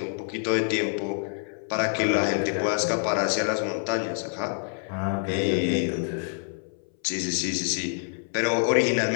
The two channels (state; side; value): silent; right; 60 dB below the other